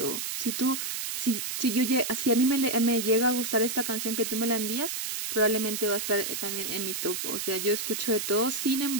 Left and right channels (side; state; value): right; noise; hiss, 3 dB below the sound